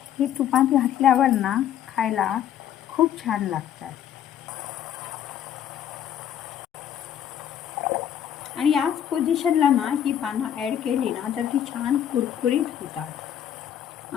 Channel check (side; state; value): right; quieter; 10.1 dB